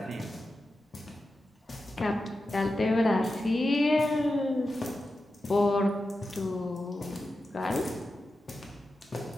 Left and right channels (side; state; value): both; normal; correlation 0.91